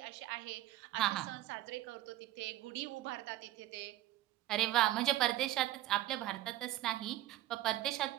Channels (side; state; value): left; quieter; 14.8 dB